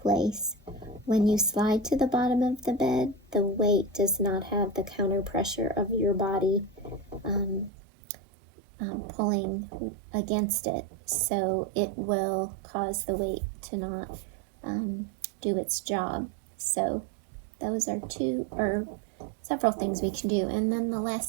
place. When you slide to the bottom of the bed, the weight does not have the counter pressure of your body pulling against it, so it will cause the weight to not do its job. So those are two or several things we can do. And then the last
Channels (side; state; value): left; drops out; at 7.7 s